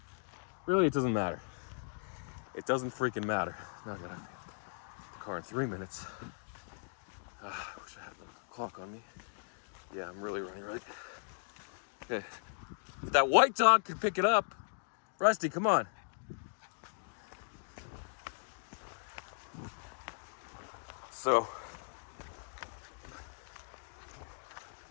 really, it doesn't matter. It doesn't freaking matter. Now I gotta get the car in 3 minutes. I wish I had the clock on me. Yeah, I'm really running late. Okay. If that white dog could pick it up. Rusty, come on. So,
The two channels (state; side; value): silent; right; digital silence